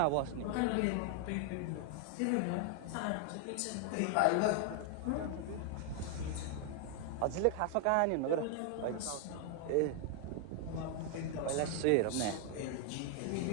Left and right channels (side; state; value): both; different; correlation 0.00